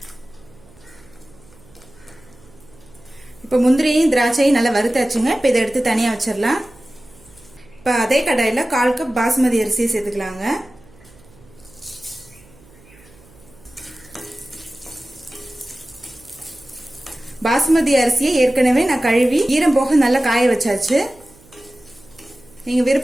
இப்போ முந்திரியும் திராட்சையும் நல்லா வறுத்தாச்சுங்க. இப்போ இதை எடுத்து தனியாக வச்சிடலாம். இப்போ அதே கடாயில் 1/4 கப் பாஸ்மதி அரிசியை சேர்த்துக்கலாங்க. பாஸ்மதி அரிசியை ஏற்கனவே நான் கழுவி ஈரம் போக நல்லா காய வச்சாச்சு. நீங்கள்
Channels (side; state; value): right; noise; hum, 26 dB below the sound